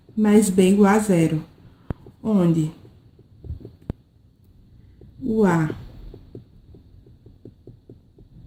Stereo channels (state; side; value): identical; both; correlation 1.00